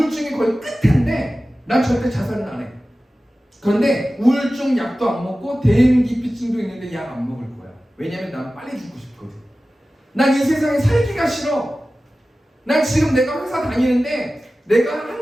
거의 끝인데 난 절대 자살은 안 해. 그런데 우울증 약도 안 먹고 대인기피증도 있는데 약 안 먹을 거야. 왜냐면 난 빨리 죽고 싶거든. 난 이 세상에 살기가 싫어. 난 지금 내가 회사 다니는데 내가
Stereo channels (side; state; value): both; normal; correlation 0.96